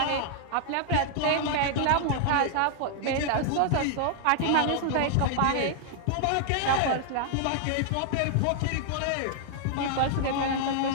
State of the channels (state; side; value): different; both; correlation 0.00